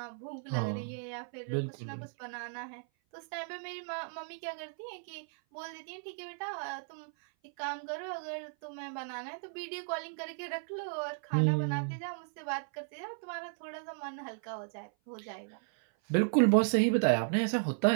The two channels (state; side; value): silent; left; 54 dB below the other